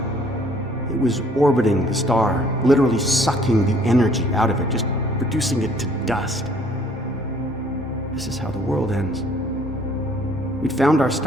It was orbiting the star, literally sucking the energy out of it, just reducing it to dust. This is how the world ends. We'd found our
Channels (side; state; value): both; normal; correlation 0.59